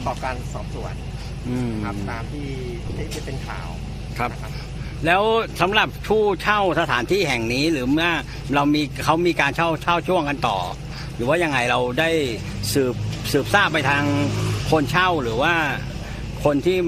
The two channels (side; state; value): both; identical; correlation 1.00